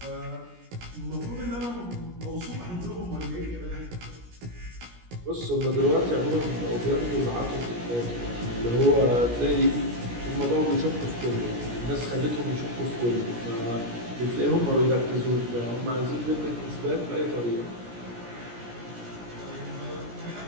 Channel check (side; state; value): left; late; 17 ms